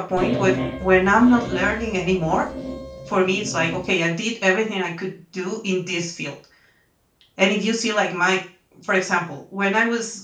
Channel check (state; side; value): identical; both; correlation 1.00